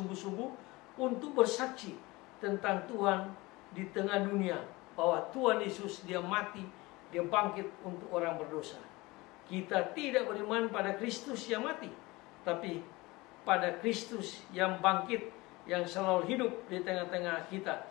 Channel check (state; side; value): quieter; right; 22.1 dB